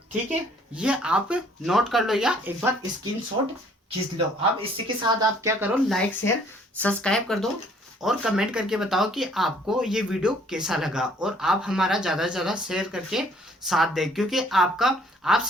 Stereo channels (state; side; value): normal; both; correlation 0.59